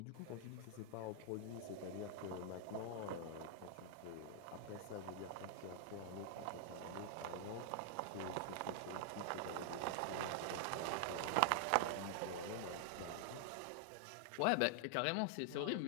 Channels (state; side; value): different; both; correlation 0.00